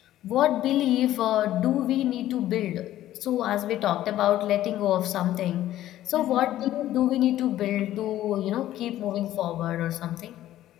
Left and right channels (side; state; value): right; quieter; 13.5 dB